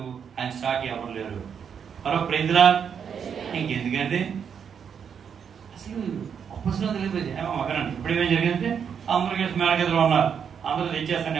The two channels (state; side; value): quieter; left; 7.3 dB